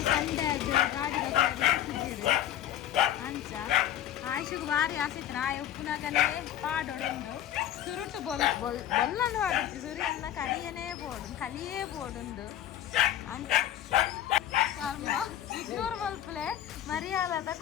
ಸಂಡೆ ಅದು ಗಾಡಿ ಅಂಚ ಆಯ್ಷಿಗೆ ಭಾರಿ ಆಸೆತ್ತು ಆಯ್ ಉಪ್ಪುನಾಗನೇ ಪಾಡೋಡುಂಡು ಸುರುಟು ಬೊಲ್ಲನ್ನು ಪಾಡುತ್ತಿ ಸುರಿಯನ್ನ ಕರಿಯನೇ ಬೋಡು ಕಲಿಯೇ ಬೋಡುಂಡು ಅಂಚ ಕರ್ಮ ಇಗ್ನೋರ್ ಮಲ್ಪಲೆ ಮರ್ಯಾದ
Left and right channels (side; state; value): right; quieter; 11.6 dB